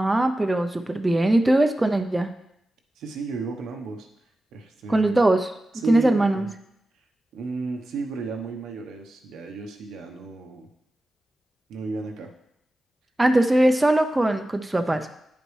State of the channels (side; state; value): both; normal; correlation 0.94